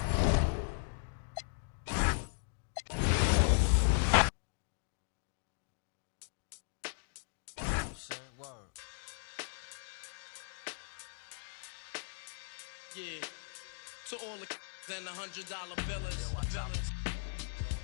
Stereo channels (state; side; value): silent; right; digital silence